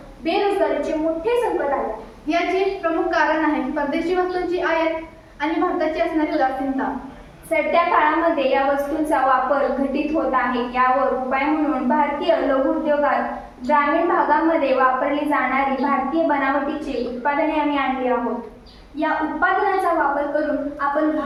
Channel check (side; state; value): both; identical; correlation 1.00